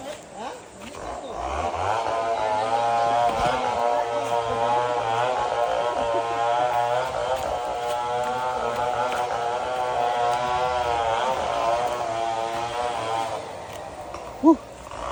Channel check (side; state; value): both; identical; correlation 1.00